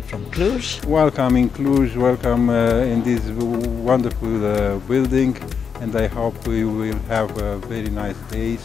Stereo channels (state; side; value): quieter; right; 6.5 dB